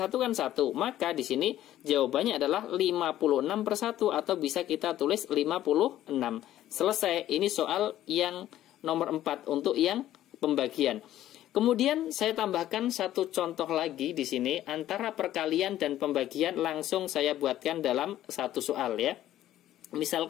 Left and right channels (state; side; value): quieter; right; 13.0 dB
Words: kan 1. Maka di sini jawabannya adalah 56/1 atau bisa kita tulis 56. Selesai. Ini soal yang nomor 4 untuk yang pembagian. Kemudian saya tambahkan satu contoh lagi di sini antara perkalian dan pembagian, langsung saya buatkan dalam satu soal, ya.